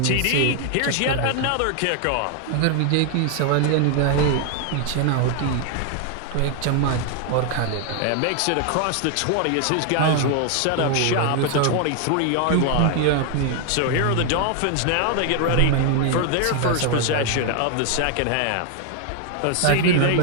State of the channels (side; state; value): both; different; correlation 0.00